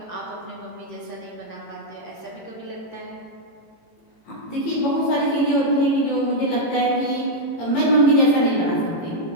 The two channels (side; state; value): right; late; 18 ms